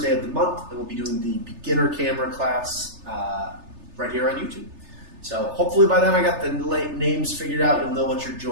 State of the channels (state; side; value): late; left; 3.3 ms